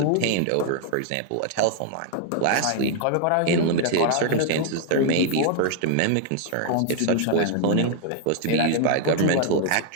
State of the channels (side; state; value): both; different; correlation 0.00